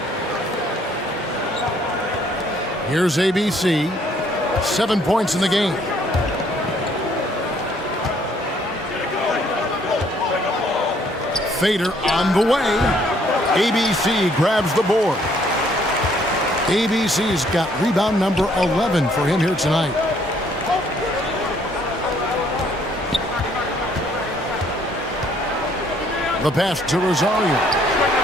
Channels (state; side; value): normal; both; correlation 0.64